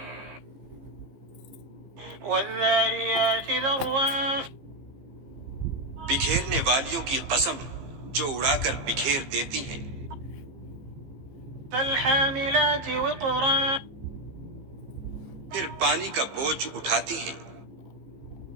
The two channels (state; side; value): late; left; 15 ms